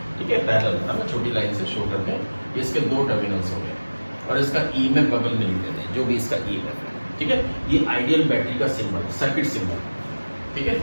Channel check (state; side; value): inverted; both; correlation -1.00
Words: ठीक है, पैरेलल है ना, छोटी लाइन से शो करते हैं। इसके दो टर्मिनल्स हो गए और इसका ईएमएफ बगल में लिख देते हैं, जो भी इसका ईएमएफ है। ठीक है, ये आइडियल बैटरी का सिंबल, सर्किट सिंबल। ठीक है,